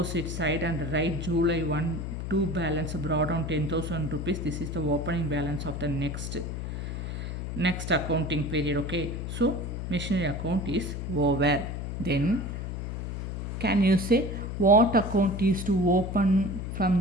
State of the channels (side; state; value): left; noise; hum, 5 dB below the sound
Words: side and write July 1 to balance brought down 10,000 rupees. This is the opening balance of the next accounting period. Okay, so machinery account is over. Then can you say what account is to open from